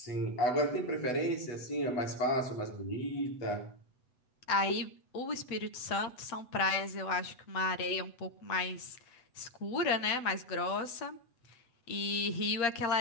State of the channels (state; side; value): late; right; 8.0 ms